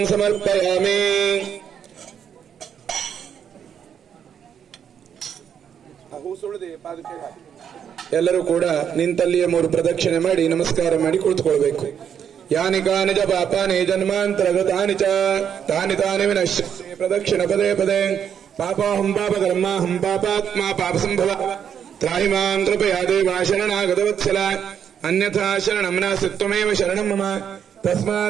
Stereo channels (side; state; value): left; quieter; 8.3 dB